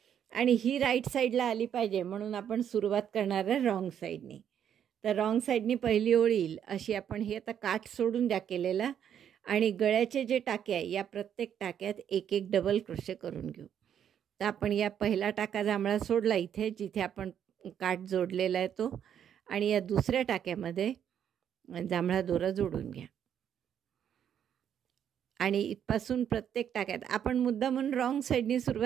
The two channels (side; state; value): left; quieter; 9.1 dB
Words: आणि ही राईट साईडला आली पाहिजे म्हणून आपण सुरुवात करणार आहे रॉंग साईडनी. तर रॉंग साईडनी पहिली ओळ येईल अशी आपण हे आता काठ सोडून द्या केलेला. आणि गळ्याचे जे टाके आहे या प्रत्येक टाक्यात एक एक डबल क्रोशे करून घेऊ. तर आपण या पहिला टाका जांभळा सोडला इथे जिथे आपण काठ जोडलेला आहे तो, आणि या दुसऱ्या टाक्यामध्ये जांभळा दोरा जोडून घ्या. आणि इथपासून प्रत्येक टाक्यात आपण मुद्दा म्हणून रॉंग साईडनी